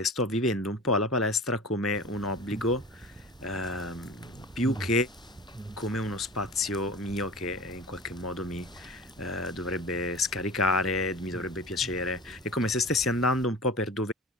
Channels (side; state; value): both; normal; correlation 0.36